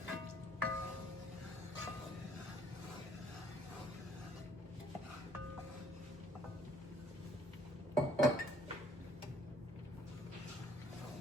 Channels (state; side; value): normal; both; correlation 0.61